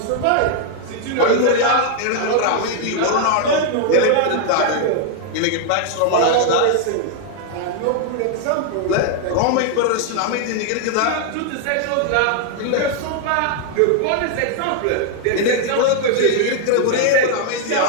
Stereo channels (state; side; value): different; both; correlation 0.00